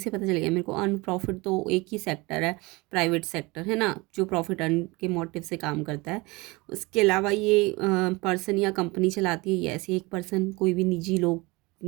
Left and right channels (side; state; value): left; quieter; 24.1 dB